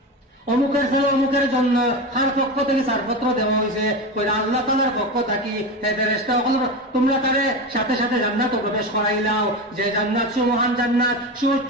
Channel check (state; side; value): normal; both; correlation 0.22